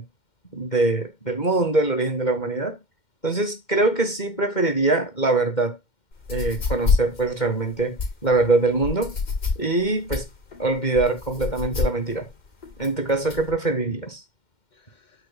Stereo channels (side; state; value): right; late; 2.1 ms